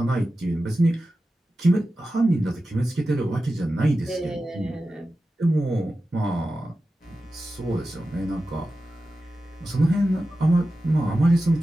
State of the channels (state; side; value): normal; both; correlation 0.93